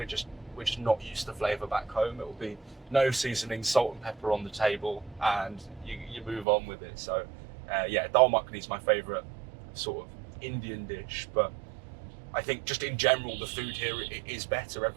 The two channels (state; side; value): drops out; left; at 6.5 s